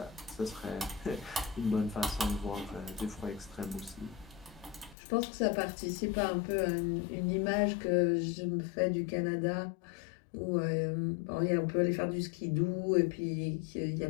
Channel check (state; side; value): drops out; right; at 5.0 s